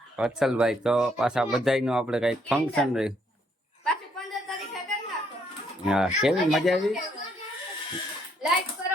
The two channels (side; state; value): both; normal; correlation 0.71